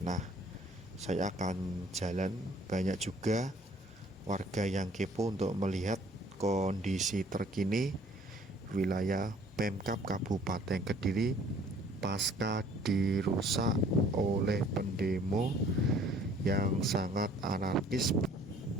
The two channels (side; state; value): both; normal; correlation 0.56